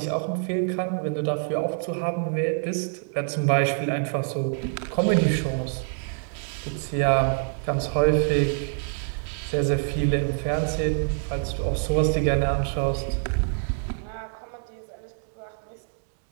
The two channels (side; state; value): left; silent; 61 dB below the other